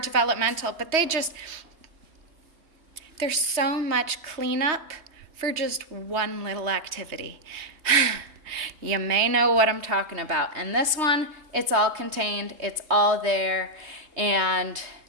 but there's so much cleanup for just one little activity. You may know what I'm talking about. And this one, it's all contained, it's all there, and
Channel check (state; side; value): late; left; 3.2 ms